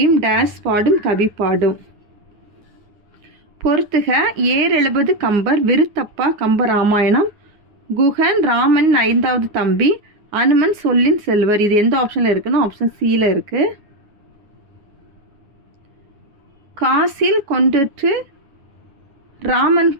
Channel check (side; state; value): left; late; 9.7 ms